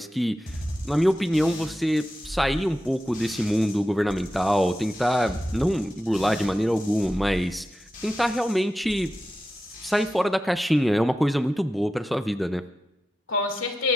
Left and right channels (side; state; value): both; normal; correlation 0.91